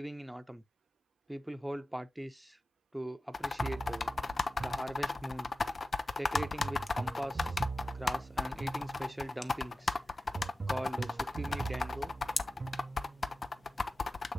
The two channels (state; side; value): normal; both; correlation 0.94